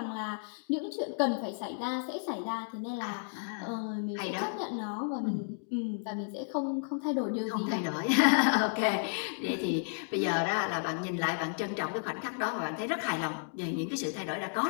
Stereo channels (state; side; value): silent; right; digital silence